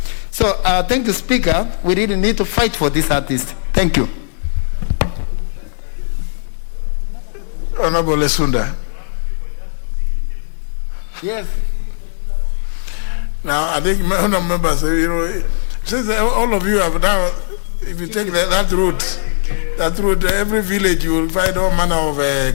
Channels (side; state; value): right; silent; digital silence